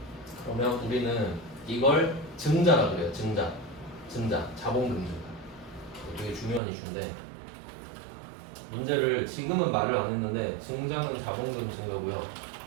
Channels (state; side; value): drops out; left; at 6.6 s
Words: 그러면 우리는 이걸 증자라 그래요. 증자. 자본금 증가. 되게 중요한 이슈인데, 문제를 지금은 말을 안 했는데 증자는 자본금 증가고요.